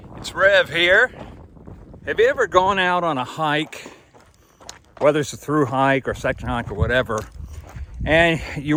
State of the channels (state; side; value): identical; both; correlation 1.00